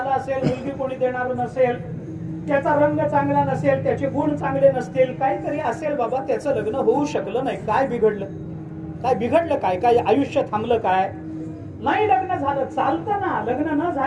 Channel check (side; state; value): both; identical; correlation 1.00